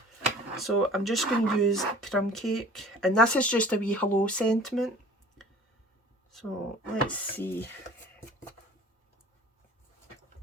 So I'm just going to use crumb cake, and this is just a wee hello sentiment. So let's see.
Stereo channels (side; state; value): both; normal; correlation 0.47